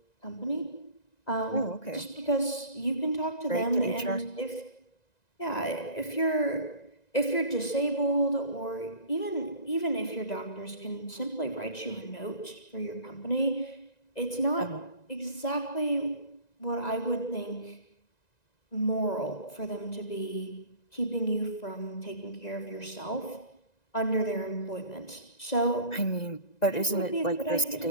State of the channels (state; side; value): late; right; 1.9 ms